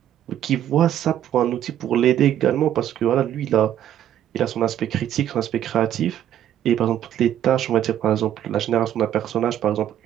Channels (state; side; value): quieter; left; 11.0 dB